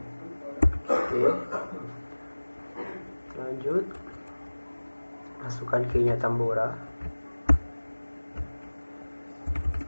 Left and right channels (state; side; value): inverted; both; correlation -1.00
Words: Oke, lanjut, masukkan key-nya Tambora.